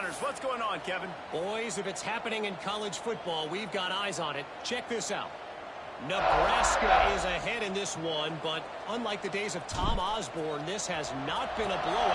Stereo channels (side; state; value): both; identical; correlation 1.00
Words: What's going on, Kevin? Boys, if it's happening in college football, we've got eyes on it. Check this out. Nebraska is ahead in this one, but unlike the days of Tom Osborne, this has not been a